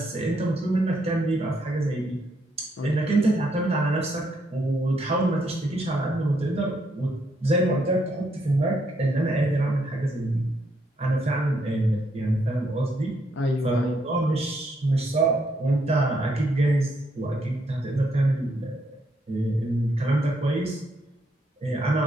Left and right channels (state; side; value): normal; both; correlation 0.75